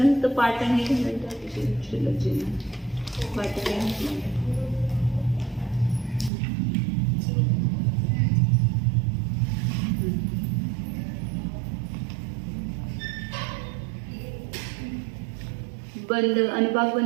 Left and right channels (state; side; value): drops out; left; at 6.3 s